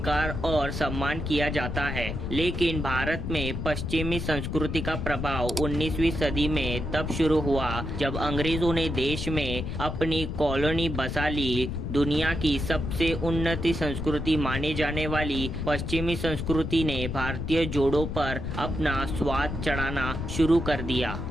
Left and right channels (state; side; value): noise; left; rumble, 4 dB below the sound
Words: और सम्मान किया जाता है। लेकिन भारत में पश्चिमी संस्कृति का प्रभाव 19वीं सदी में तब शुरू हुआ जब अंग्रेजों ने देश में अपनी कॉलोनी बसा ली। दुनिया की सबसे उन्नत संस्कृति माने जाने वाली पश्चिमी संस्कृति ने भारतीय जोड़ों पर अपना स्वाद चढ़ाना शुरू कर दिया।